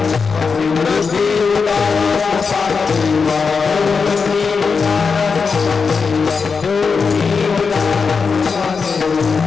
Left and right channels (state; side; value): quieter; right; 5.2 dB